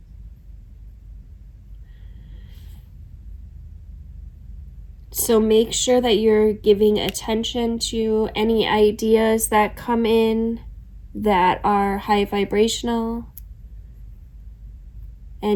So make sure that you're giving attention to any ideas that come in that are high vibrational.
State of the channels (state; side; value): identical; both; correlation 1.00